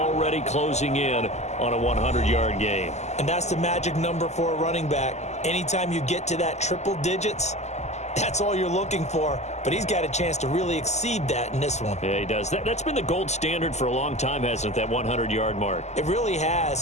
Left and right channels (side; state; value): right; late; 0.33 ms